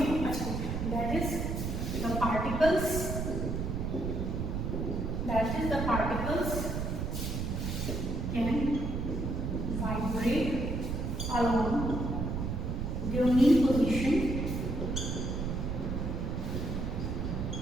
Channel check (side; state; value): right; noise; rumble, 2 dB below the sound